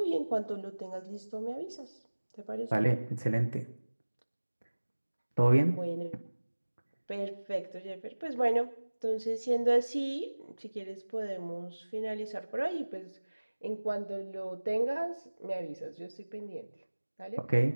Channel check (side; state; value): both; inverted; correlation -1.00